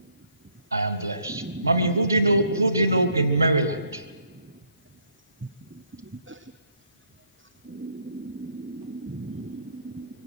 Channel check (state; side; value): inverted; both; correlation -0.68